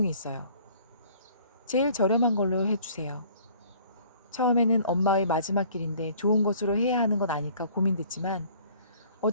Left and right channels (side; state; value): both; inverted; correlation -0.54